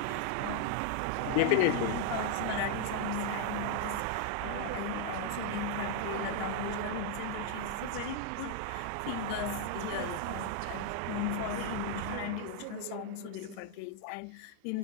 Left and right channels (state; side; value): different; both; correlation 0.00